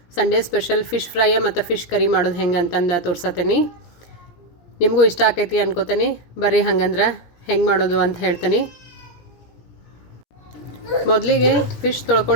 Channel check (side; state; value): right; late; 17 ms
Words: ಸಂಡೇ ಸ್ಪೆಷಲ್ ಫಿಶ್ ಫ್ರೈ ಮತ್ತು ಫಿಶ್ ಕರಿ ಮಾಡೋದು ಹೆಂಗೆ ಅಂತಂದು ತೋರ್ಸತ್ತೀನಿ. ನಿಮಗೂ ಇಷ್ಟ ಆಕೈತಿ ಅನ್ಕೋತೀನಿ. ಬರ್ರಿ ಹಂಗಂದ್ರೆ ಹೆಂಗೆ ಮಾಡೋದು ಅಂತ ಹೇಳ್ತೀನಿ. ಮೊದಲಿಗೆ ಫಿಶ್